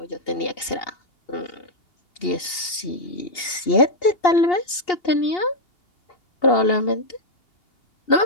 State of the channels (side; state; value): right; late; 2.8 ms